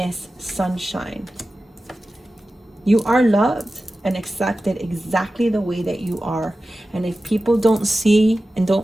Sunshine. You are loved and accepted exactly the way that you are. And if people don't see and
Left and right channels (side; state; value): both; normal; correlation 0.94